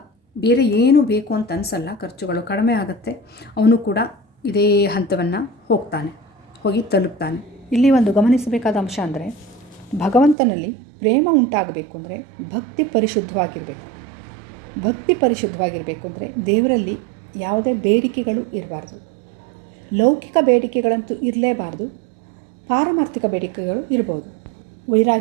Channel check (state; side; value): drops out; left; at 10.4 s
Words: ಬೇರೆ ಏನು ಬೇಕು ಅಂತ ಅನಿಸಲ್ಲ, ಖರ್ಚುಗಳು ಕಡಿಮೆ ಆಗುತ್ತೆ. ಅವನು ಕೂಡ ಇದೇ ಹಂತವನ್ನು ಹೋಗಿ ತಲುಪ್ತಾನೆ. ಇಲ್ಲಿ ಒಂದು ಗಮನಿಸಬೇಕಾದ ಅಂಶ ಅಂದರೆ, ಭಗವಂತನಲ್ಲಿ ಪ್ರೇಮ ಉಂಟಾಗಬೇಕು ಅಂದರೆ ಭಕ್ತಿ ಪರಿಶುದ್ಧವಾಗಿರಬೇಕು. ಭಕ್ತಿ ಪರಿಶುದ್ಧವಾಗಿರಬೇಕು ಅಂದರೆ ದೇವರಲ್ಲಿ ಯಾವುದೇ ಬೇಡಿಕೆಗಳು ಇರಬಾರ್ದು. ಲೌಕಿಕ ಬೇಡಿಕೆಗಳಂತೂ ಇರಲೇಬಾರ್ದು, ಪಾರಮಾರ್ಥಿಕ ಬೇಡಿಕೆಗಳು ಇರ್ಬೋದು.